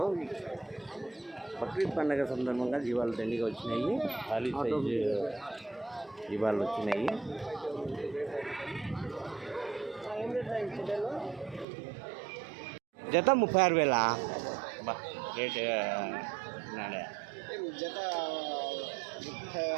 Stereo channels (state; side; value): drops out; left; at 11.7 s